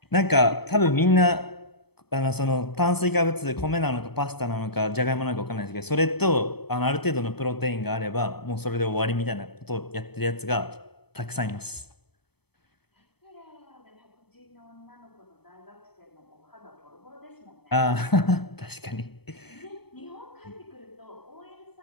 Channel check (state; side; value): late; right; 0.97 ms